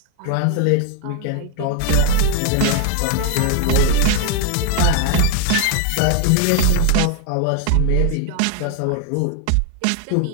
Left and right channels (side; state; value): both; different; correlation 0.00